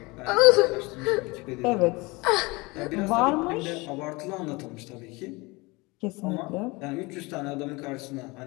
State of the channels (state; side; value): quieter; right; 24.5 dB